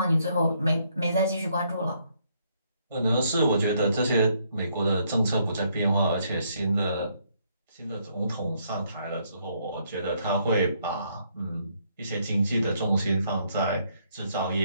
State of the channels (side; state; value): both; inverted; correlation -0.71